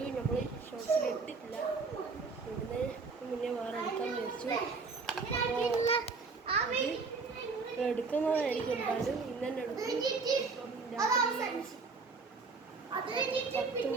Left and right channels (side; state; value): left; quieter; 4.4 dB